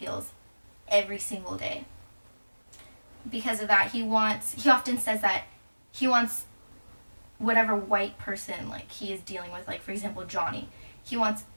every single day. Because of that, he often says that he wants whatever white person he is dealing with, for example Johnny, he wants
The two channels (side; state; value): both; inverted; correlation -1.00